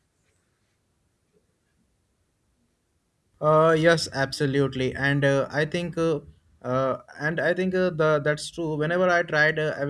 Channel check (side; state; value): both; identical; correlation 1.00